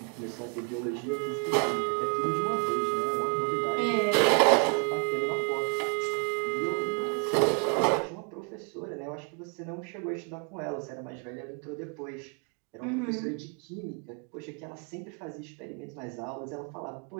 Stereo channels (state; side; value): quieter; left; 36.3 dB